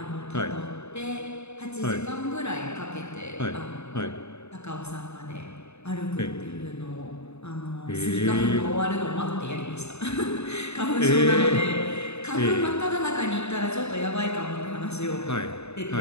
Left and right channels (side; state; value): right; late; 0.81 ms